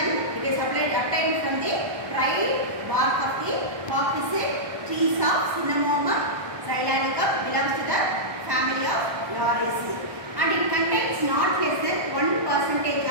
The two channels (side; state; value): left; late; 1.2 ms